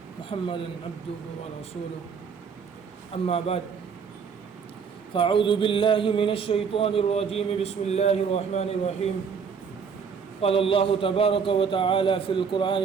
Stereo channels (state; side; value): quieter; left; 6.2 dB